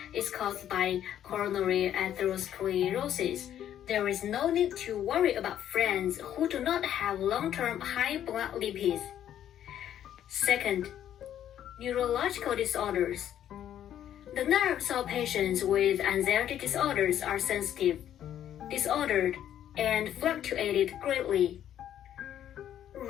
is caused by coronary atherosclerosis, there is no need to worry about friends who do not have long-term high blood lipids. Second, neurological disorders. The nerves of patients with anxiety disorders are sensitive, disordered, and fluctuated greatly,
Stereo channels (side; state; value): right; quieter; 10.7 dB